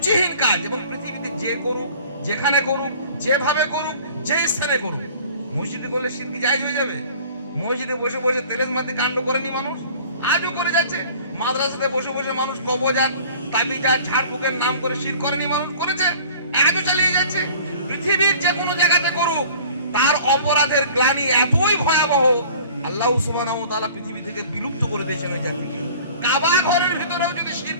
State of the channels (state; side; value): inverted; both; correlation -0.47